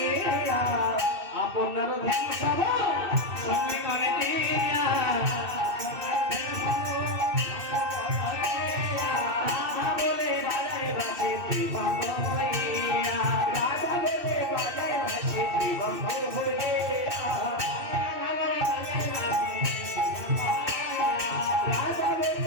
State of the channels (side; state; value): left; late; 2.6 ms